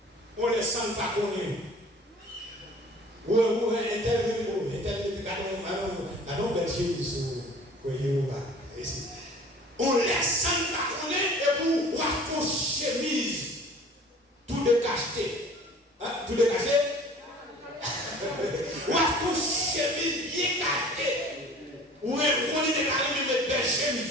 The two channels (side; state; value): both; normal; correlation 0.47